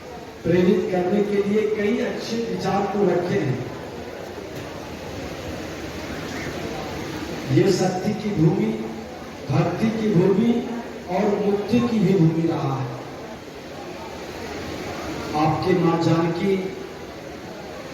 प्रेरित करने के लिए कई अच्छे विचार को रखे हैं। ये शक्ति की भूमि, भक्ति की भूमि और मुक्ति की भी भूमि रहा है। आपके मां जानकी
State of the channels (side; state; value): both; identical; correlation 1.00